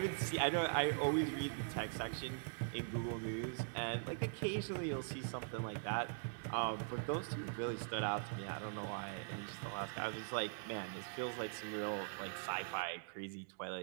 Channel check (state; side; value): silent; left; digital silence